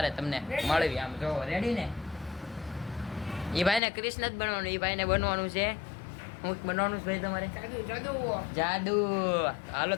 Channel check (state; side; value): drops out; right; at 3.8 s